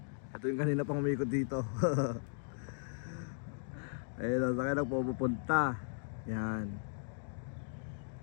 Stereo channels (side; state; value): right; silent; digital silence